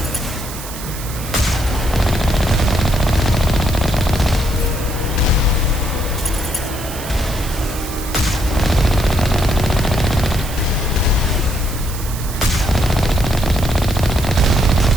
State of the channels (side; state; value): right; noise; hiss, 12 dB below the sound